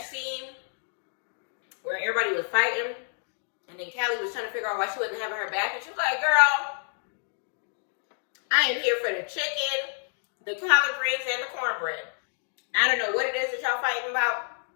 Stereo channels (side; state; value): right; silent; 59 dB below the other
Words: scene where everybody was fighting, and then Callie was trying to figure out why she wasn't having her back, and she was like, girl, I am here for the chicken, the collard greens, and the cornbread. I don't know what it is that y'all fighting about.